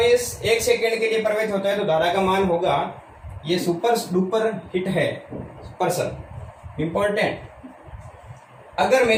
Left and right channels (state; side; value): identical; both; correlation 1.00